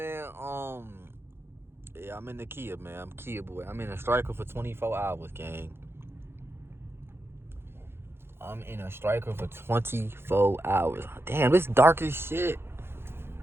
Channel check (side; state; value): left; late; 0.11 ms